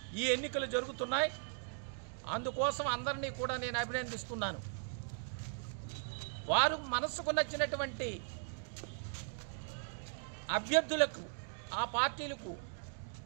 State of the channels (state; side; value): silent; left; digital silence